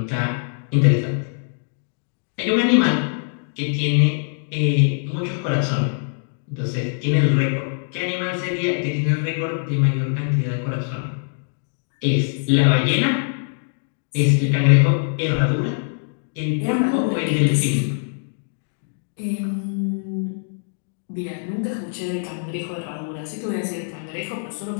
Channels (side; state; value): right; silent; digital silence